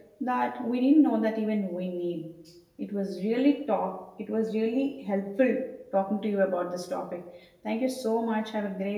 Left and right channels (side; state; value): both; identical; correlation 1.00